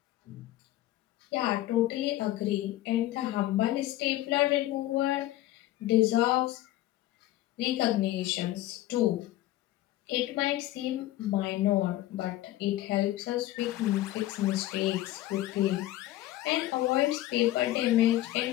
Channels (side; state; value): right; quieter; 15.3 dB